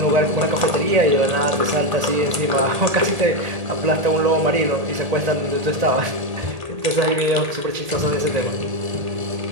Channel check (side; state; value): left; late; 1.8 ms